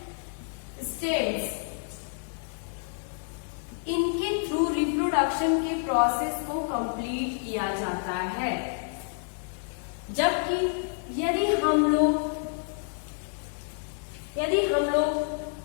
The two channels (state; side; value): silent; right; digital silence